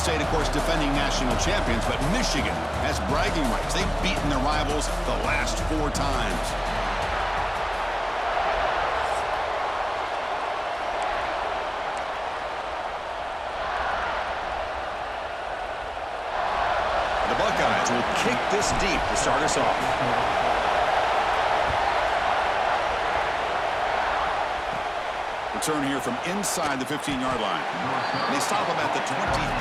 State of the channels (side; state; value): both; identical; correlation 1.00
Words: of course, defending national champions, but Michigan has bragging rights. They've beaten their rivals the last 4 times. The Buckeyes will kick this deep to start us off. Return here from inside the 15-yard line. They stop him at the